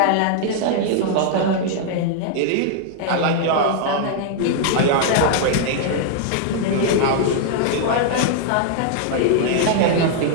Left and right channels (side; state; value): both; different; correlation -0.01